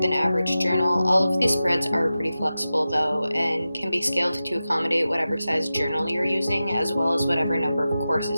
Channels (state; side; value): inverted; both; correlation -0.94